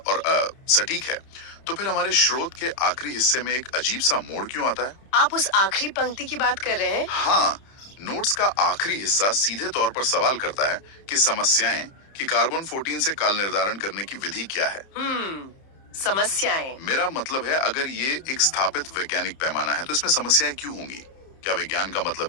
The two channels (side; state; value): right; late; 30 ms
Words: और सटीक है, तो फिर हमारे स्रोत के आखिरी हिस्से में एक अजीब सा मोड़ क्यों आता है? आप उस आखिरी पंक्ति की बात कर रहे हैं? हाँ, नोट्स का आखिरी हिस्सा सीधे तौर पर सवाल करता है कि समस्याएं कि कार्बन 14 से काल निर्धारण करने की विधि क्या है। समस्याएं। मेरा मतलब है, अगर ये एक स्थापित वैज्ञानिक पैमाना है तो इसमें समस्याएं क्यों होंगी? क्या विज्ञान का